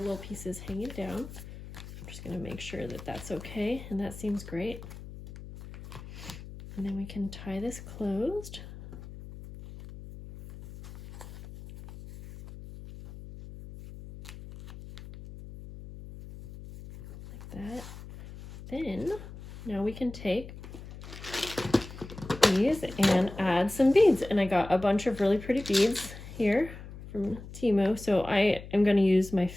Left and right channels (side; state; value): left; noise; hum, 14 dB below the sound